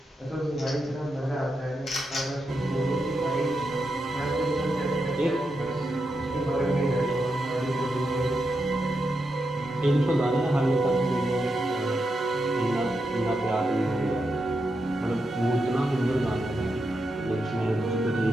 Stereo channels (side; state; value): both; normal; correlation 0.85